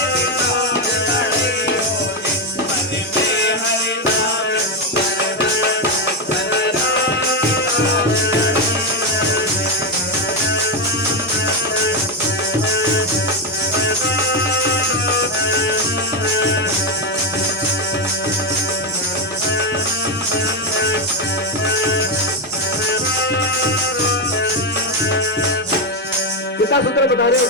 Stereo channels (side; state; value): both; normal; correlation 0.09